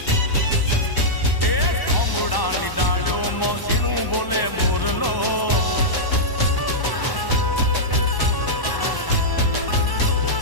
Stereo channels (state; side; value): late; right; 1.0 ms